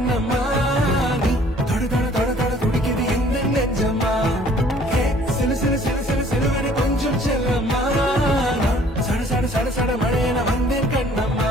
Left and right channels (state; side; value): normal; both; correlation 0.56